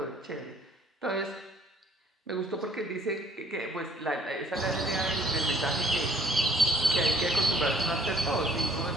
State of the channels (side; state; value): both; normal; correlation 0.58